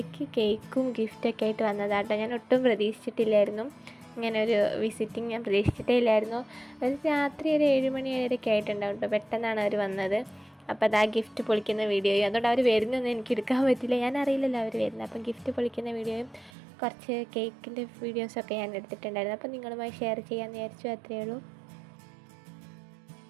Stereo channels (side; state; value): left; drops out; at 16.5 s